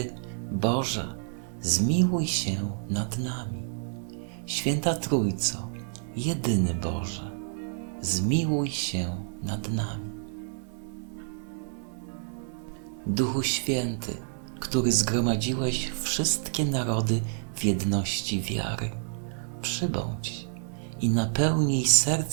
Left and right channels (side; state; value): left; silent; digital silence